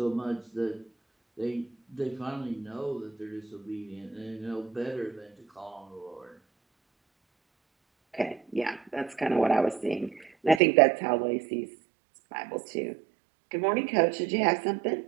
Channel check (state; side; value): drops out; left; at 10.6 s